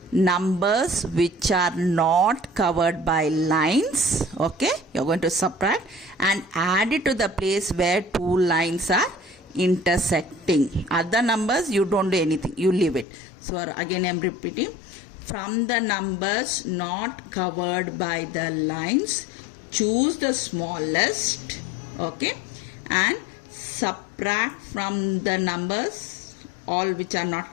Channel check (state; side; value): drops out; right; at 13.1 s